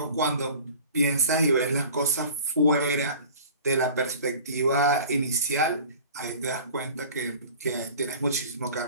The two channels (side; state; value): both; inverted; correlation -0.43